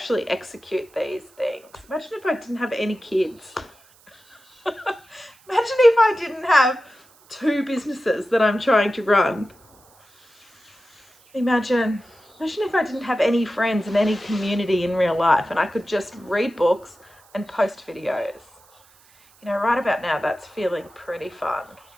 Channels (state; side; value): noise; right; hiss, 29 dB below the sound